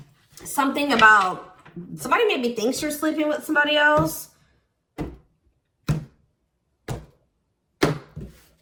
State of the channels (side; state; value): both; identical; correlation 1.00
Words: something about, somebody maybe thinks you're sleeping with somebody else. Or